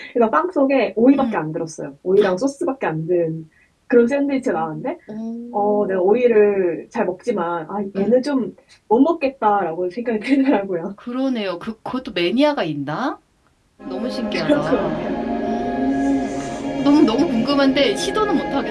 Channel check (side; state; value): both; identical; correlation 1.00